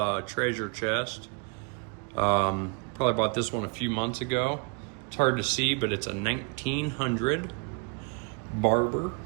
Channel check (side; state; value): left; quieter; 33.3 dB